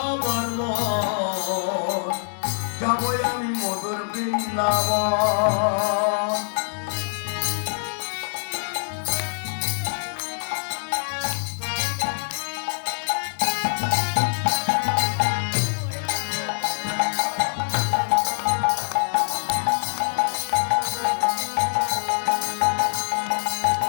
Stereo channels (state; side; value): silent; right; 62 dB below the other